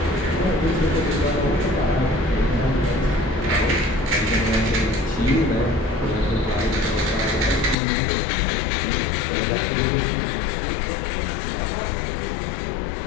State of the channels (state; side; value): drops out; right; at 7.8 s